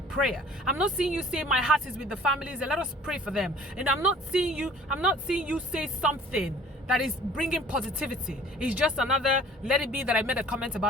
prayer. I'm not seeing you say my heart is with the families and let us pray for them. And I'm not seeing you say something that is bringing positivity. It's just another let it be that I made a comment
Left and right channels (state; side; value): normal; both; correlation 0.51